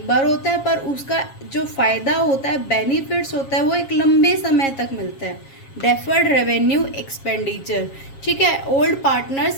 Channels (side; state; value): right; late; 7.4 ms